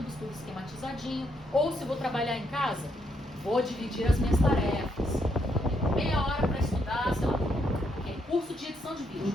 tudo esquematizadinho. Ou se vou trabalhar em casa, vou dividir as minhas tarefas. Meia hora para estudar, sei lá, curso de edição de vídeo.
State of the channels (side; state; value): both; normal; correlation 0.75